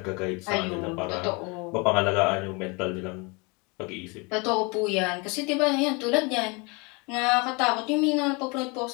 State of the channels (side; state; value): right; quieter; 29.3 dB